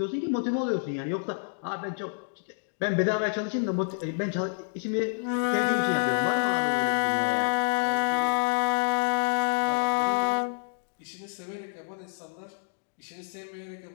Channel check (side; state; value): right; silent; digital silence